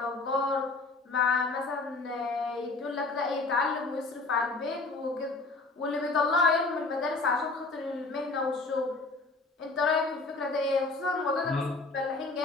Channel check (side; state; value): right; quieter; 3.5 dB